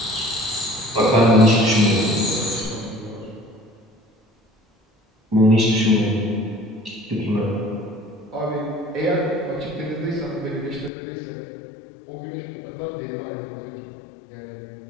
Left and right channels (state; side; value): drops out; right; at 10.9 s